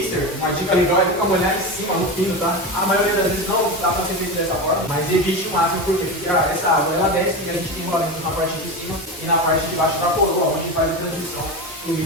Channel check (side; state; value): both; normal; correlation 0.21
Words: uma dica legal é nunca molhar em cima, no fino, tá? A maioria das vezes não dá pra ser feito dessa forma, mas evite o máximo, porque essa água ela desce e a gente tem rolamento na parte de cima e na parte de baixo da coroa, onde faz a transmissão. O